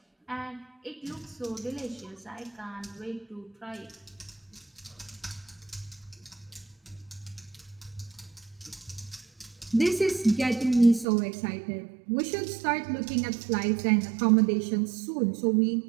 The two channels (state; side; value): drops out; left; at 11.1 s